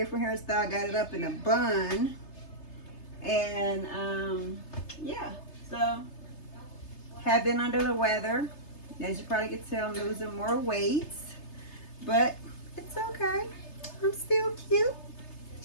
hairstyle. Got it up in a bun. And, yeah. So, have been under the weather. As you probably can tell, I'm losing more weight. But, it's okay. I'm still cute.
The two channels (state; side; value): late; right; 3.3 ms